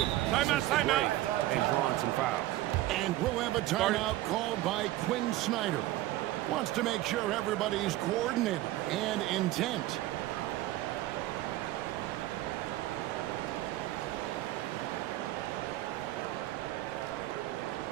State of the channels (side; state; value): left; quieter; 16.0 dB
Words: since the break and drawn some fouls. And we'll have a timeout called by Quinn Snyder. Wants to make sure everybody's coordinated and intent.